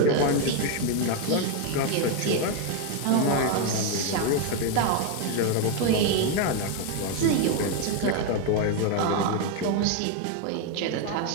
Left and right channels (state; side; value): different; both; correlation 0.01